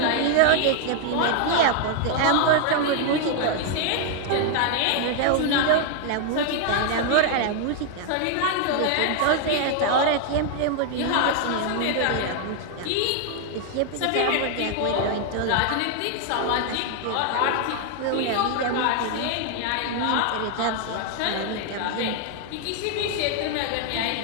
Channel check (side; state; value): both; different; correlation 0.00